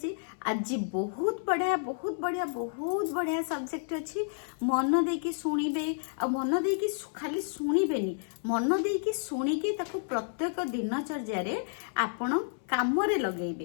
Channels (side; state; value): right; silent; 57 dB below the other